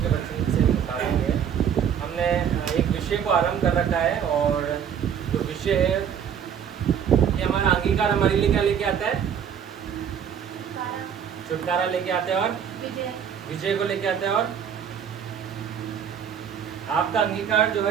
के वचन से निकालेंगे। हमने एक विषय को आरंभ कर रखा है और जो विषय है ये हमारा अंगीकार हमारे लिए क्या लेके आता है? छुटकारा लेके आते हैं और विजय को लेके आते हैं। और आपका अंगीकार जो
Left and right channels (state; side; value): quieter; left; 8.1 dB